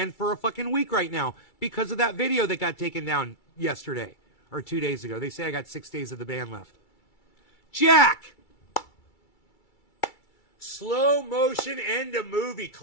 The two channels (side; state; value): right; late; 2.3 ms